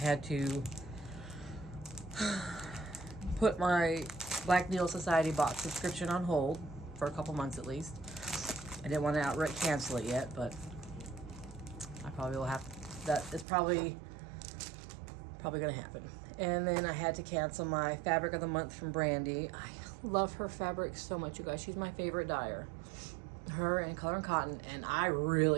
to put my Black Needle Society box subscription on hold for a couple months at least. I didn't want to outright cancel it yet, but I probably will have to. That is probably going to happen. And then I had to cancel my Fabric of the Month from Brandy. I love her fabric so much, you guys. She's my favorite dyer. Her and Color and Cotton, and I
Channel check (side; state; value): left; drops out; at 13.5 s